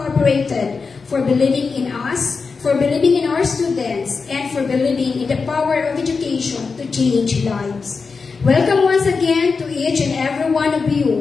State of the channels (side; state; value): right; quieter; 4.8 dB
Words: for believing in us, for believing in our students, and for believing in the power of education to change lives. Welcome once again to each and every one of